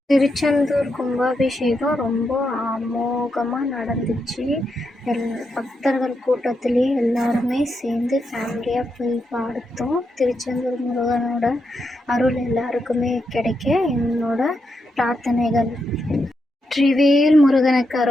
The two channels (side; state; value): both; normal; correlation 0.84